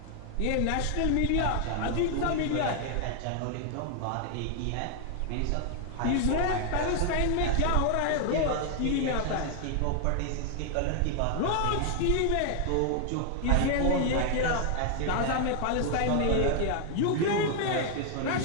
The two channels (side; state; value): both; different; correlation 0.00